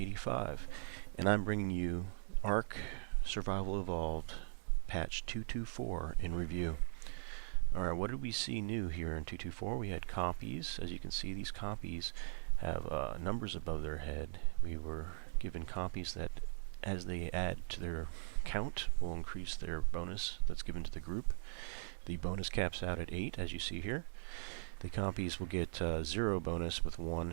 and I'm bringing you ARK Survival Evolved patch 224 in review. Alright, what did we see new here in 224? We had compies. As you can see, these compies have numbers above their head. We were given compies that, as they add to their count, will increase their bonus that's given to the group. The bonus caps out at 8, as you see here. The compies will get 0 bonus with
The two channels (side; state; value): left; silent; 51 dB below the other